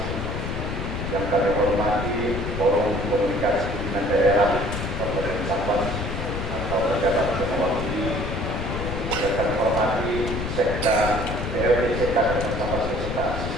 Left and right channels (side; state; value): left; noise; rumble, 4 dB below the sound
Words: yang kami hormati Forum Komunikasi Pimpinan Daerah Kabupaten Sambas atau Jabatan Mewakili, yang kami hormati Sekda DPRD Kabupaten Sambas beserta